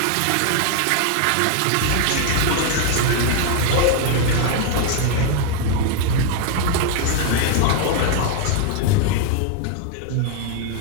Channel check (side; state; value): both; different; correlation 0.00